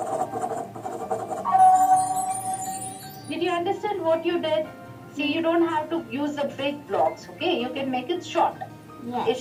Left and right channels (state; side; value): identical; both; correlation 1.00